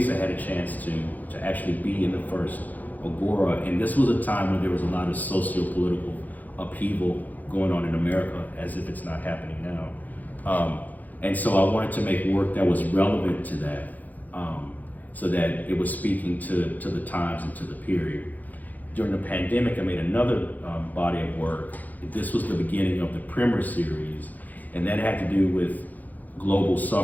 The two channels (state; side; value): late; right; 0.081 ms